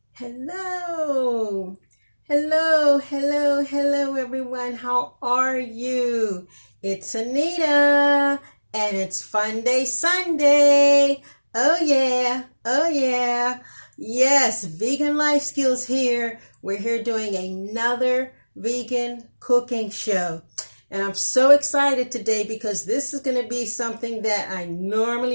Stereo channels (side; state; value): both; inverted; correlation -1.00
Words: Hello. Hello, everyone. How are you? It's Anita, and it's Fun Day Sunday. Oh, yeah. Yes, Vegan Life Skills here. We're here doing another vegan cooking show. And I'm so excited today because this is going to be something that I